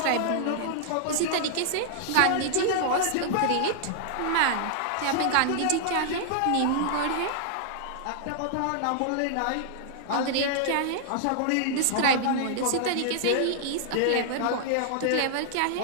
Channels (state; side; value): different; both; correlation -0.01